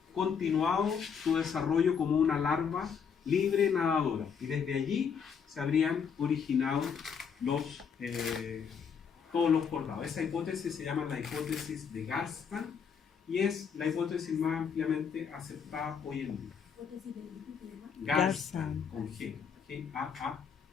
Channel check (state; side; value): quieter; right; 6.7 dB